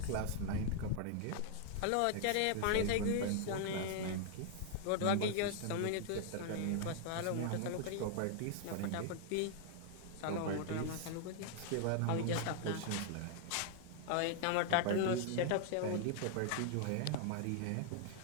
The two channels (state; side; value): different; both; correlation 0.00